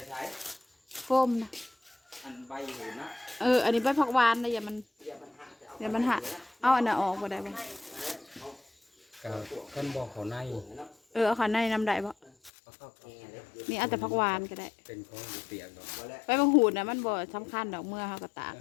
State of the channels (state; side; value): drops out; right; at 12.5 s